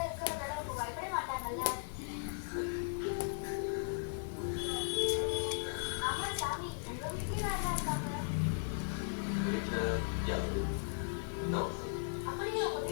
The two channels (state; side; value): silent; right; 53 dB below the other